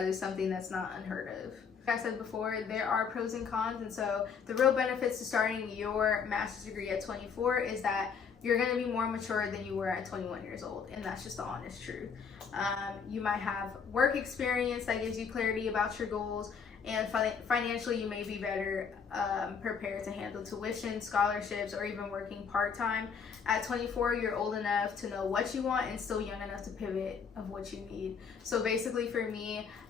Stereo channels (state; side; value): quieter; right; 6.3 dB